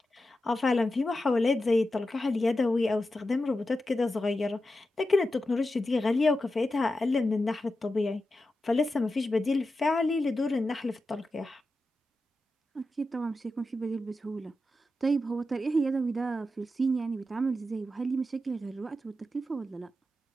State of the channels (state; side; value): normal; both; correlation 0.90